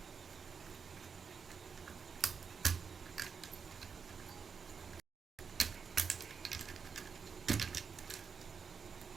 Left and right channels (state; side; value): quieter; left; 5.9 dB